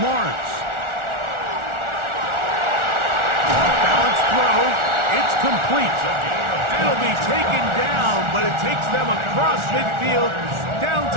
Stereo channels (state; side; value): late; left; 1.4 ms